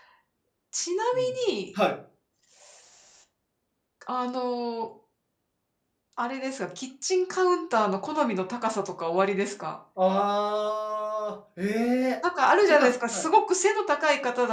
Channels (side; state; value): both; identical; correlation 1.00